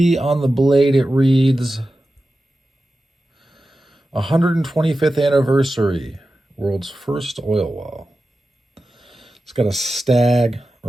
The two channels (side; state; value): both; normal; correlation 0.93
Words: on the blade, it reads 125th anniversary, world's first oil well. It's got a Stag